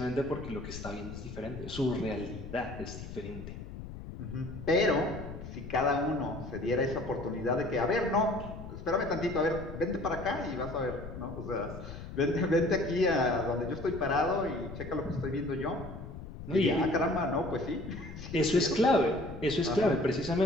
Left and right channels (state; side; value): noise; left; rumble, 11 dB below the sound